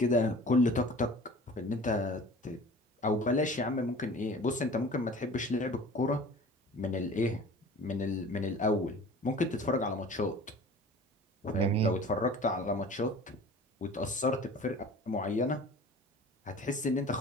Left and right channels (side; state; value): both; normal; correlation 0.43